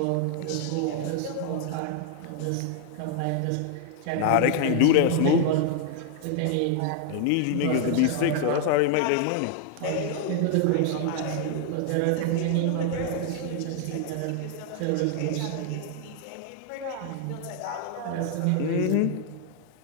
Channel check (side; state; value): both; different; correlation 0.00